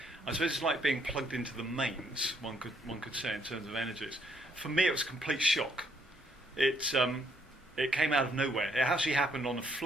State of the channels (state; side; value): normal; both; correlation 0.70